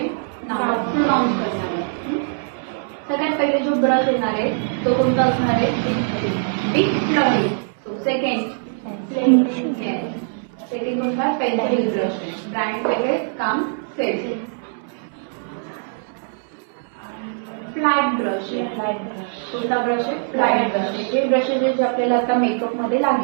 नाव प्रोनाउन्स करणार आहे. सगळ्यात पहिले जो ब्रश येणार आहे तो कोणता असणार आहे? Big fluffy. सेकंड कोणता? Pencil brush. ब्रँड वगैरे काम सेल. फ्लॅट ब्रश आहे. फ्लॅट ब्रश कोणता ब्रश आहे? फ्लॅट ब्रश आहे. जे ब्रशेस जे आपल्याला आता मेकअप मध्ये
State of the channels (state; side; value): silent; left; 64 dB below the other